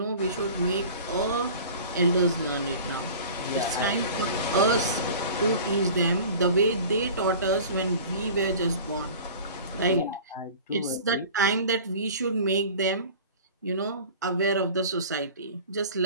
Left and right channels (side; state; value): both; inverted; correlation -0.41